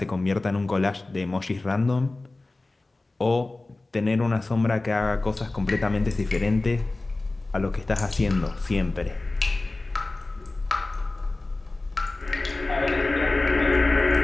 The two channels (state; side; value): quieter; right; 3.1 dB